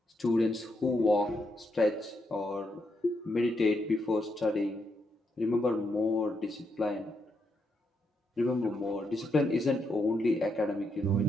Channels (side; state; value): both; normal; correlation 0.80